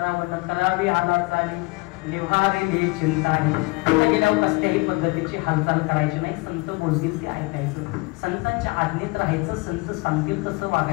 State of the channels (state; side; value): quieter; right; 26.1 dB